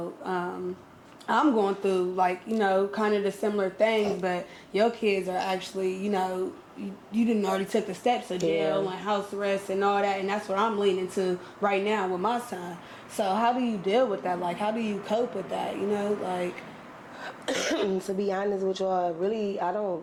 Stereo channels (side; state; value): both; identical; correlation 1.00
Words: I'm going through kind of the similar things, but your kids are actually, you didn't already took the steps of jail and house arrest and all that, and that's what I'm leaning to right now with my son. So how do you deal with that? How do you cope with that? To be honest with y'all, really, I